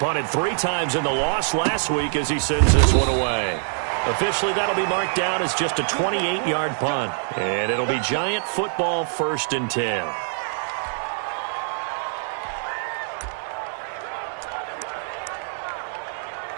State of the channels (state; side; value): silent; left; digital silence